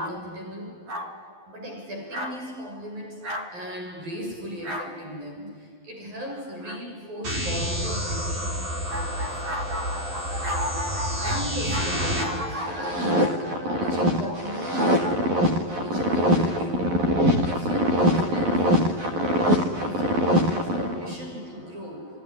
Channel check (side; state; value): left; late; 11 ms